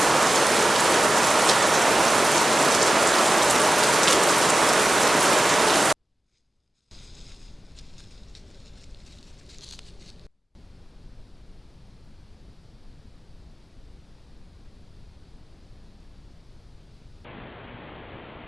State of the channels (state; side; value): normal; both; correlation 0.94